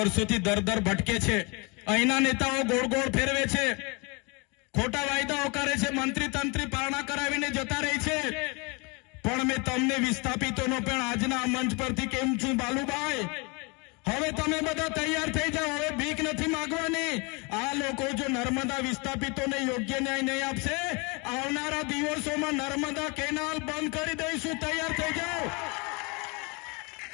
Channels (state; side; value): quieter; right; 30.0 dB